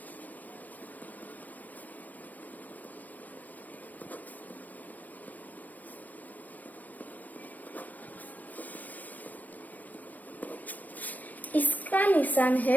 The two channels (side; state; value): right; late; 0.082 ms